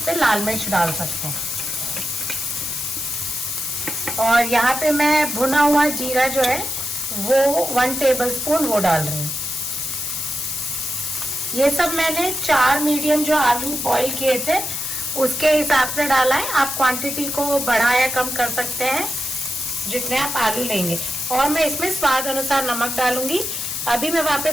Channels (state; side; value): noise; left; hiss, 4 dB below the sound